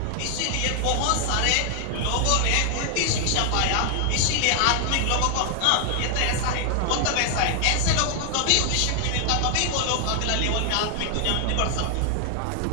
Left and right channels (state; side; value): different; both; correlation 0.00